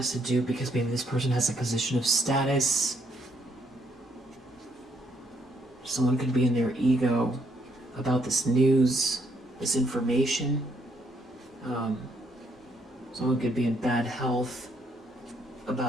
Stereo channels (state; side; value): normal; both; correlation 0.72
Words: to do because maybe this person has a position of status. Someone could be in their ego about this news, this information. Someone could be in bad health